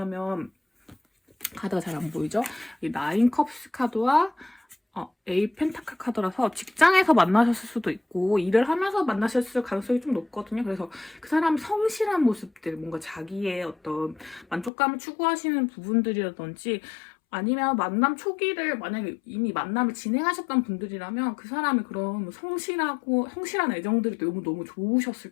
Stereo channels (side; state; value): right; drops out; at 14.7 s